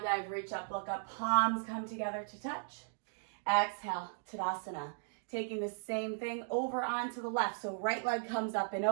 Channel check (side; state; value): left; silent; digital silence